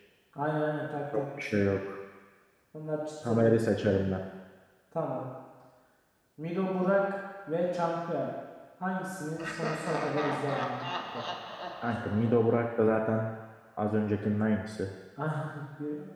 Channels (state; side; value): identical; both; correlation 1.00